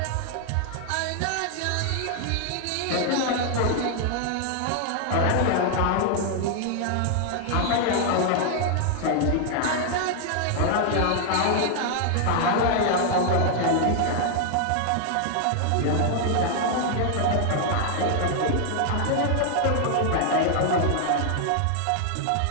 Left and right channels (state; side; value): different; both; correlation 0.00